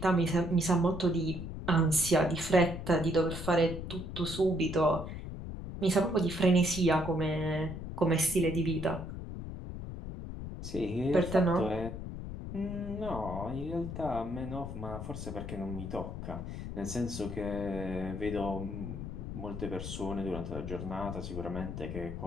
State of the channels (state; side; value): noise; left; rumble, 7 dB below the sound